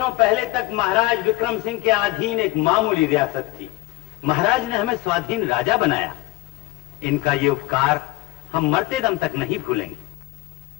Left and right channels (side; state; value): right; quieter; 18.7 dB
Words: पहले तक महाराज विक्रम सिंह के अधीन एक मामूली रियासत थी। महाराज ने हमें स्वाधीन राजा बनाया। इनका ये उपकार हम मरते दम तक नहीं भूलेंगे।